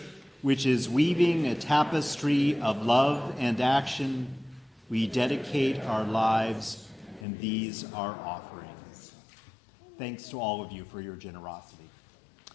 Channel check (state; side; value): drops out; right; at 7.2 s